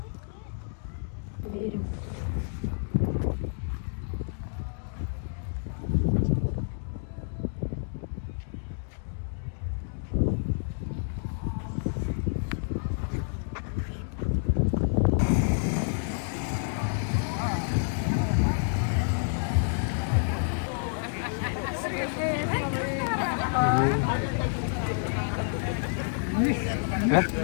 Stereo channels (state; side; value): silent; right; digital silence